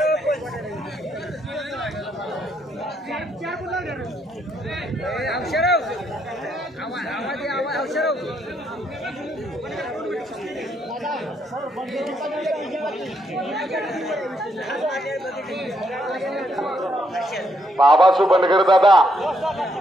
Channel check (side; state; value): both; normal; correlation 0.74